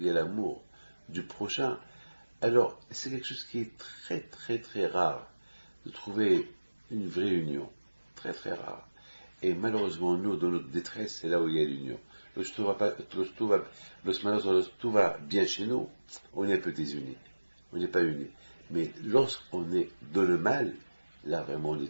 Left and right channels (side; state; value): both; inverted; correlation -1.00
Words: y a l'amour du prochain. Alors, c'est quelque chose qui est très, très, très rare de trouver une vraie union. Très, très rare. Et malheureusement, nous, dans notre détresse, c'est là où il y a l'union. Lorsque tout va bien chez nous, on est un peu désunis. On n'est pas unis. Mais lorsqu'on est dans le mal, là, vraiment, on